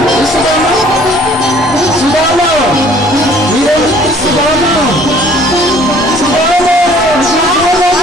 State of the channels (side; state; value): both; normal; correlation 0.55